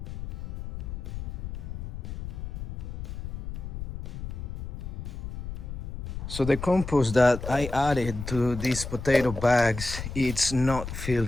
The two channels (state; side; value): noise; left; rumble, 7 dB below the sound